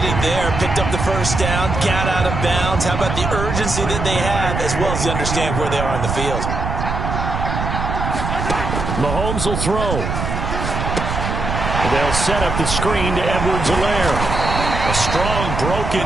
there, picked up the first down, got out of bounds. How about the urgency that they have, as well as they understand where they are on the field? Mahomes will throw. They'll set up the screen to Edwards-Helaire. A strong broken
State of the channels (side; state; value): right; noise; rumble, 3 dB below the sound